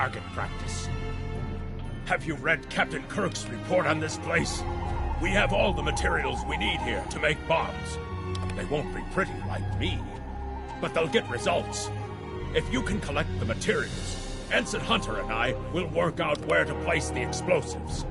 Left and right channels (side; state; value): both; identical; correlation 1.00